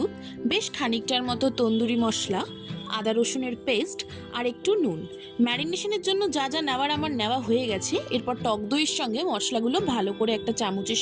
বেশ খানিকটার মতো তন্দুরি মশলা, আদা রসুনের পেস্ট আর একটু নুন। ম্যারিনেশনের জন্য যা যা নেওয়ার আমার নেওয়া হয়ে গেছে। এরপর টক দইয়ের সঙ্গে মশলাগুলো ভালো করে একটা চামচের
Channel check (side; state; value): both; identical; correlation 1.00